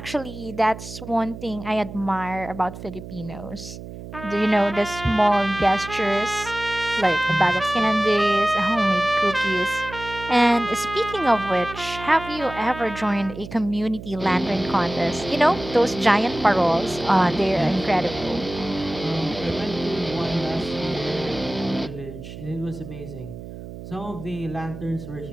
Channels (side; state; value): right; noise; hum, 12 dB below the sound